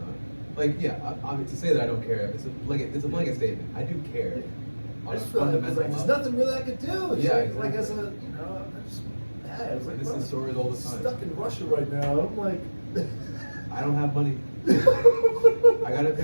Like, yeah, I mean, to say that I don't care, it's a blanket statement. I do care. Yeah. On I a just feel like, fundamental there's level. nothing really I could do. It's Yeah, like exactly. as a, you know, I'm just mad. It's like, This is bro, stories all the time. Stuck in Russia right now. I'm like, I don't have money. I gotta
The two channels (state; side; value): inverted; both; correlation -1.00